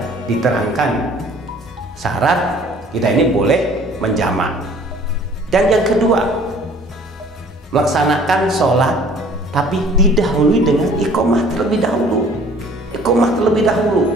diterangkan syarat kita ini boleh menjamak. Dan yang kedua, melaksanakan sholat tapi didahului dengan iqomah terlebih dahulu. Iqomah terlebih dahulu.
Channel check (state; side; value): normal; both; correlation 0.52